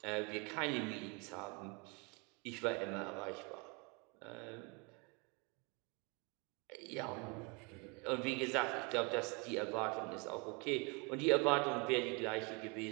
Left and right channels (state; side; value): quieter; left; 30.7 dB